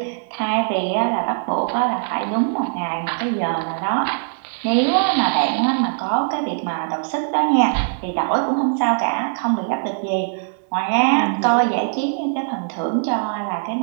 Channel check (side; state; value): left; silent; 61 dB below the other